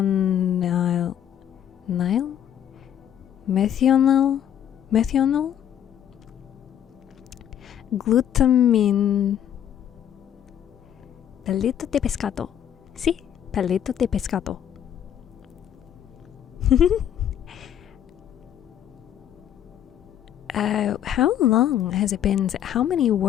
glutamin. Palito de pescado. Sí, palito de pescado. How long has it been? How many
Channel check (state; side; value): quieter; right; 10.0 dB